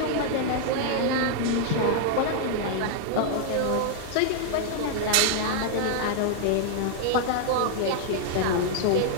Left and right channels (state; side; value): different; both; correlation -0.01